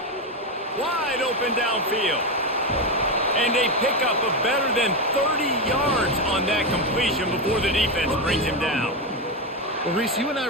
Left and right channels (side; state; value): both; normal; correlation 0.11